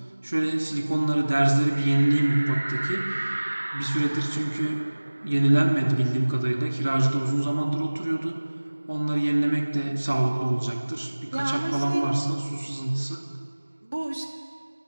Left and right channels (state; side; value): inverted; both; correlation -1.00